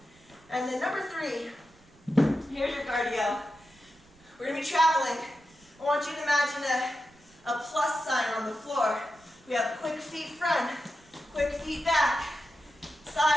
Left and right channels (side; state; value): right; noise; rumble, 29 dB below the sound